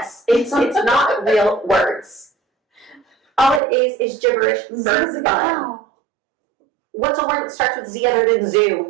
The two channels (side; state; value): left; drops out; at 3.6 s